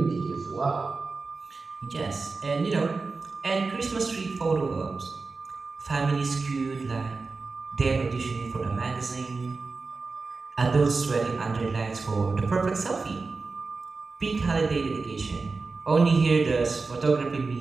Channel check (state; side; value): quieter; left; 4.1 dB